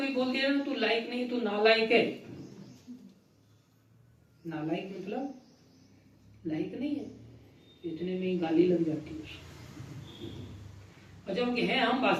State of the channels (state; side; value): identical; both; correlation 1.00